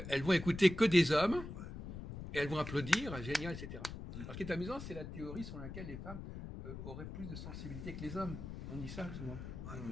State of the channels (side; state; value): left; noise; rumble, 9 dB below the sound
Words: vont écouter que des hommes, et elles vont applaudir, génial, etc. Alors, ce qui est amusant, c'est la théorie selon laquelle les femmes auraient plus de sensibilité que les hommes. On dit ça souvent. Ouais.